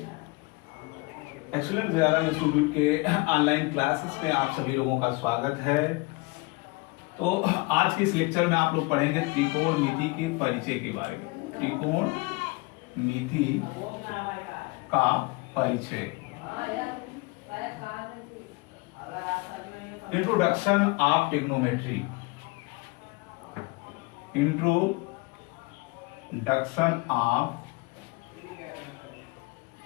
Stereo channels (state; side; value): quieter; right; 25.9 dB